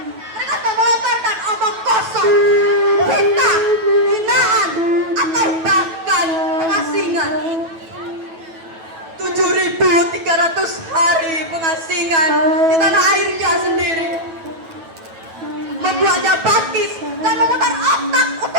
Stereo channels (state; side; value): late; left; 9.1 ms